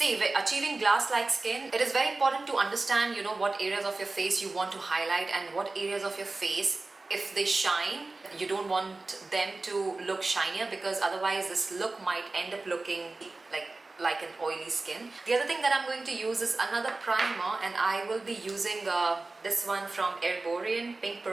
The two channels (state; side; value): quieter; left; 3.4 dB